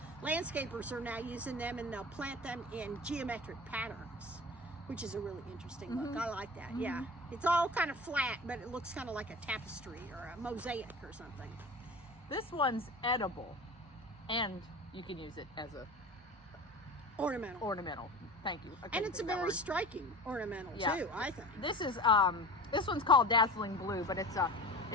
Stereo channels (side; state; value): both; normal; correlation 0.35